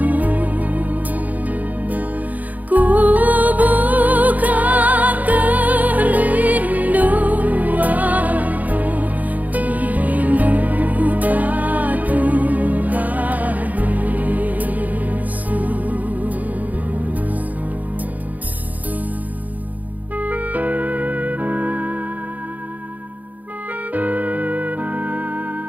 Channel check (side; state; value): left; late; 0.079 ms